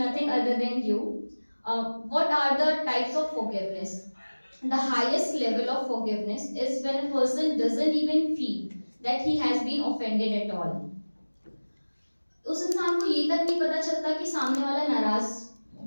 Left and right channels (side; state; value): both; inverted; correlation -1.00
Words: other than you. What are the types of forgiveness? The highest level of forgiveness is when a person doesn't even feel that he has been offended at all. उस इंसान को ये तक नहीं पता चलता कि सामने